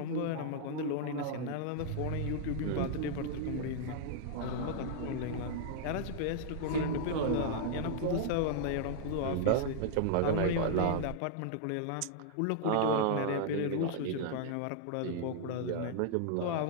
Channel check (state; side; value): different; both; correlation -0.01